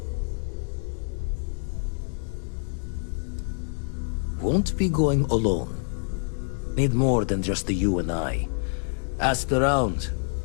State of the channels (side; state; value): right; silent; 60 dB below the other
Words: Won't be going alone. Need more than just the you and I. Asked around.